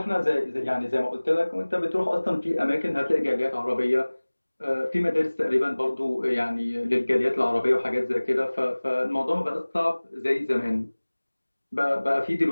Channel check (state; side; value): inverted; both; correlation -1.00